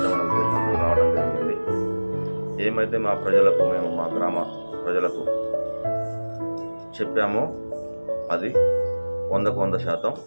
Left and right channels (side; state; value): both; inverted; correlation -1.00